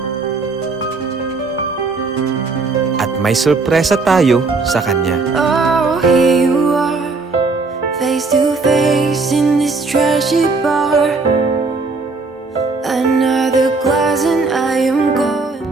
At may sorpresa tayo sa kanya. Oh, here you are, face to face in this trashy bar. Another glass and I am gone.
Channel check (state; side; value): quieter; left; 3.9 dB